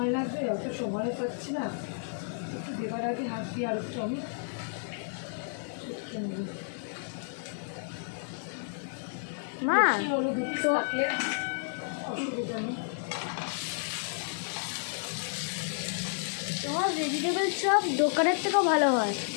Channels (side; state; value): right; silent; 57 dB below the other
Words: লাগবে, অত সময় পাচ্ছি না। একটু দেবার আগে হাত দিয়ে আর একটু আমি মা তো থাকলে অসুবিধা নেই। তোমার ভেজিটেবল চপ দোকানের থেকেও ভালো হয়।